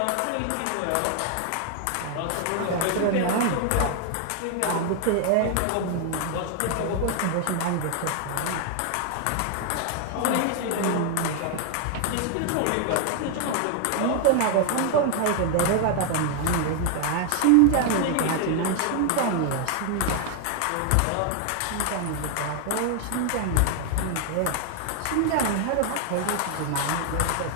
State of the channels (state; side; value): different; both; correlation 0.00